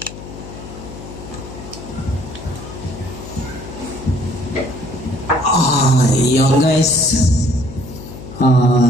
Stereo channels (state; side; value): noise; left; hum, 13 dB below the sound